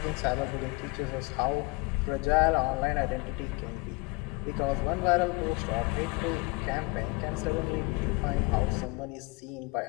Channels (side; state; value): right; quieter; 26.0 dB